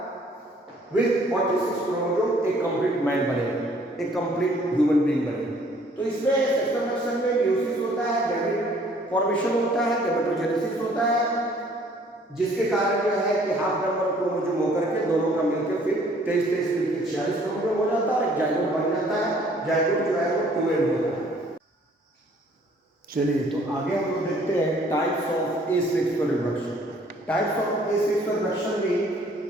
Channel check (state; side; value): normal; both; correlation 0.59